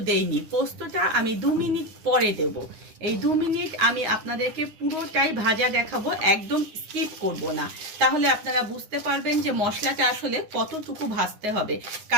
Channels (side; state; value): left; late; 10 ms